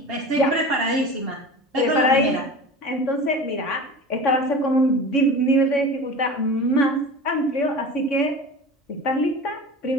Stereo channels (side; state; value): both; normal; correlation 0.34